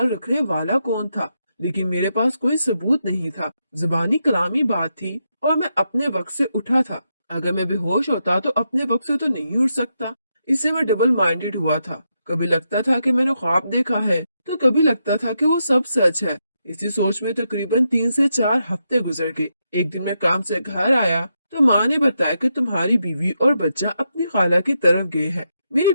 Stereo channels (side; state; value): both; inverted; correlation -0.83